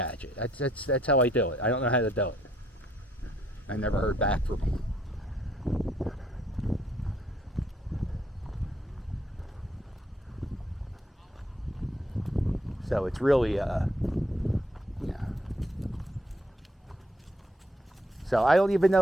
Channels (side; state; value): both; normal; correlation 0.69